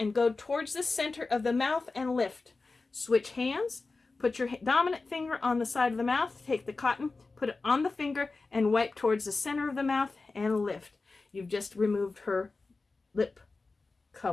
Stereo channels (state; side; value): quieter; right; 3.8 dB